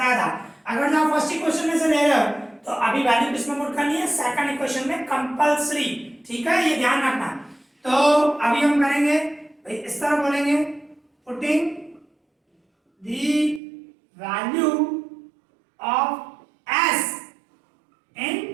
था, अगर आप फर्स्ट इक्वेशन में से ले रहे हो तो अभी वैल्यू किसमें पुट करनी है, सेकंड इक्वेशन में कंपल्सरी, ठीक है, ये ध्यान रखना। तो अभी हम करेंगे इस तरह बोलेंगे, putting the value of s in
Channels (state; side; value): drops out; left; at 13.6 s